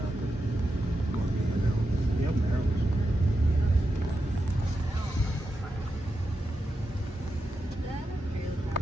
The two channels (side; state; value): both; normal; correlation 0.88